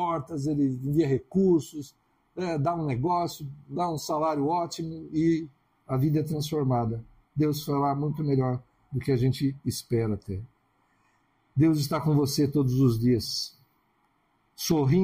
Ele envia recursos, dá um negócio, dá um salário ótimo e a vida é transformada. Deus fará muito melhor do que a gente espera ter. Deus está com você todos os dias,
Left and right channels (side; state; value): both; identical; correlation 1.00